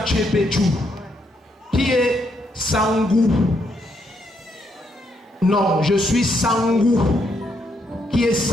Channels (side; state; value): both; normal; correlation 0.76